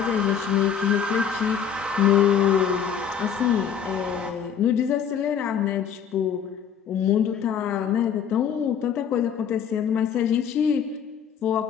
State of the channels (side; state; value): right; quieter; 7.9 dB